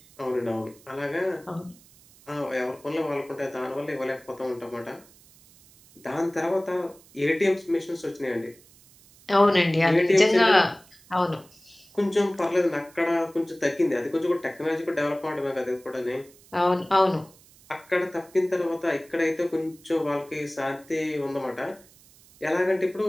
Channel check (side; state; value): right; noise; hiss, 26 dB below the sound